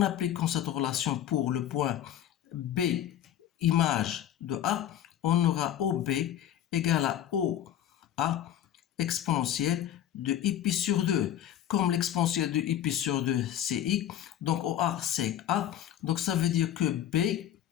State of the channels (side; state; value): right; quieter; 11.1 dB